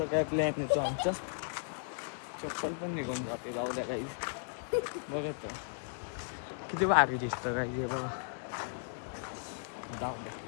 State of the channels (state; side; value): silent; right; digital silence